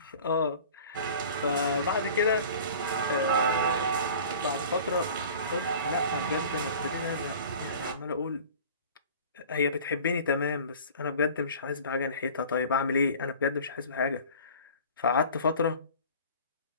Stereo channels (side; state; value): both; inverted; correlation -0.43